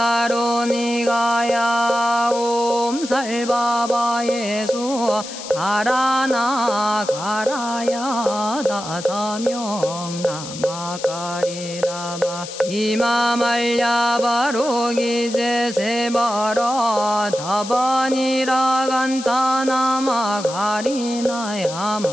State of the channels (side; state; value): left; noise; hiss, 11 dB below the sound